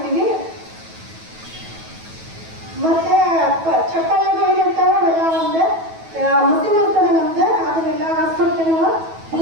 ಮತ್ತೆ ಚಪ್ಪಲಿಗೆ ಏನಿರ್ತಾವೆ ಅವೆಲ್ಲ ಒಂದು ಮಸೀನ್ ಇರ್ತದೆ ನಮ್ದು, ಅದನ್ನೆಲ್ಲ ಹಾಸ್ಬಿಟ್ಟು ನಾವು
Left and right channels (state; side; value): late; left; 9.2 ms